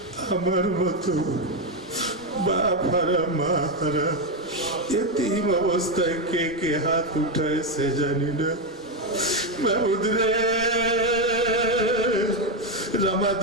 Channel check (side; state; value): both; normal; correlation 0.07